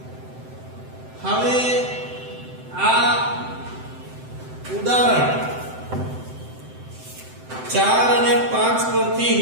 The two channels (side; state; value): left; late; 7.8 ms